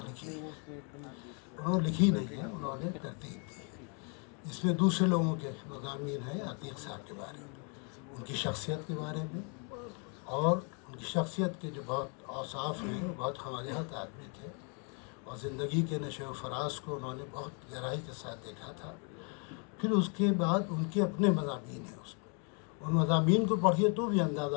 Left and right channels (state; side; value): quieter; right; 38.1 dB